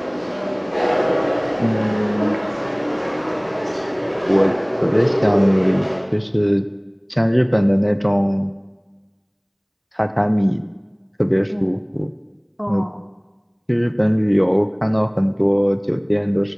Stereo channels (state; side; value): identical; both; correlation 1.00